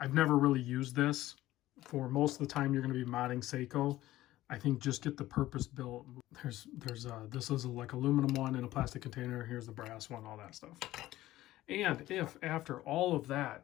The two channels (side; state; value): right; quieter; 15.7 dB